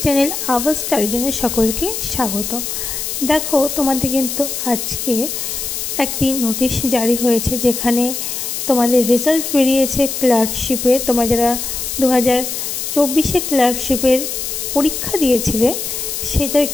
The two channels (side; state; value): left; noise; hiss, 4 dB below the sound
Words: চ্যানেল আওয়াজ স্টাডিজনে সকলকে স্বাগত। দেখো, তোমাদের কিন্তু আজকে একটি নোটিশ জারি হয়েছে, যেখানে তোমাদের রেজাল্ট বেরিয়েছে ক্লার্কশিপে। তোমরা যারা 2024-এ ক্লার্কশিপের পরীক্ষা দিয়েছিলে, সেটার